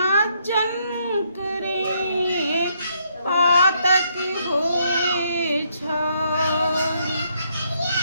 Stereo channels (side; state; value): both; inverted; correlation -0.73